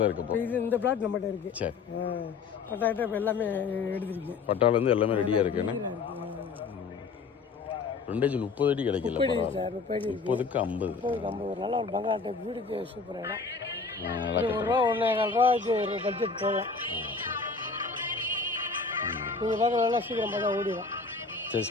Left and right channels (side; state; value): right; quieter; 4.6 dB